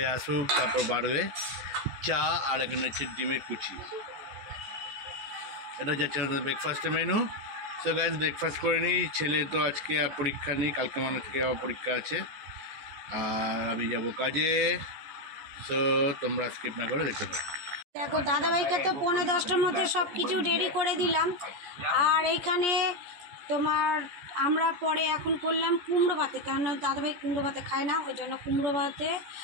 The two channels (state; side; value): late; left; 14 ms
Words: আসুক, তারপর বাড়বে চা, আর এখানে হচ্ছে ডিমের কুচি। এটা হচ্ছে আমাদের ব্রেকফাস্টের মেনু। সো গাইজ ব্রেকফাস্ট করে নিই। ছেলে তো আজকে পরীক্ষা নেই, কালকে মানে থেকে আবার পরীক্ষা আছে, আর আমি যাব কাজে। সো তোমরা স্কিপ না করে দেখতে পারো। দেখো দাদাভাইকে তো 9:30টার মধ্যে সব কিছু রেডি করে দিলাম। আর এইখানে তোমার আমরা পরে এখন করলাম কুমড়ো ভাতে, কারণ দাদাভাই কুমড়ো ভাতে খায় না, ওই জন্য কুমড়ো ভাতে।